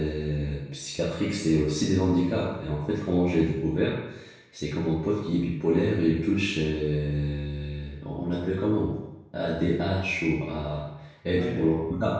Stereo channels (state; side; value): identical; both; correlation 1.00